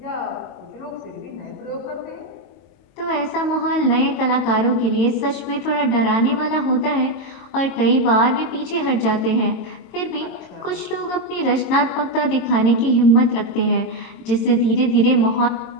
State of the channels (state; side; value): late; right; 22 ms